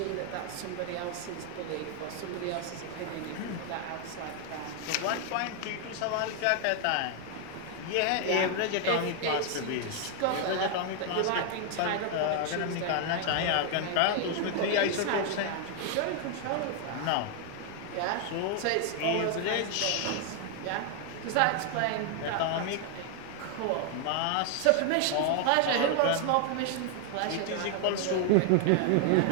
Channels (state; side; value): different; both; correlation 0.00